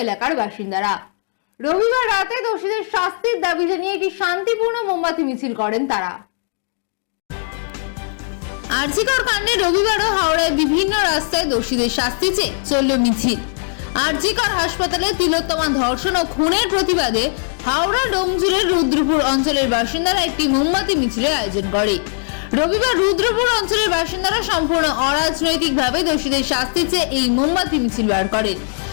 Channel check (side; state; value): right; silent; digital silence